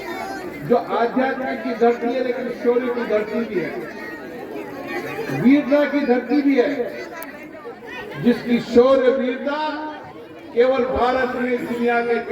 जो आध्यात्म की धरती है, लेकिन शौर्य की धरती भी है, वीरता की धरती भी है, जिसकी शौर्य वीरता केवल भारत में दुनिया के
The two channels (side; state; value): both; identical; correlation 1.00